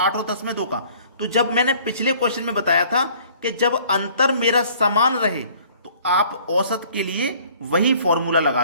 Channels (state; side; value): inverted; both; correlation -0.55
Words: और 10 में 2 का। तो जब मैंने पिछले क्वेश्चन में बताया था कि जब अंतर मेरा समान रहे तो आप औसत के लिए वही फॉर्मूला